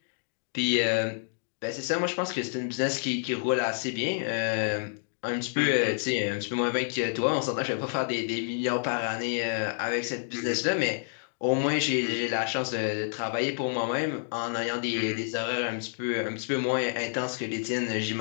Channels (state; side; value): silent; right; digital silence